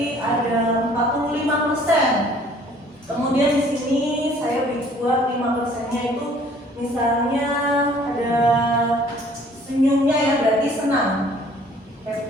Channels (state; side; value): normal; both; correlation 0.56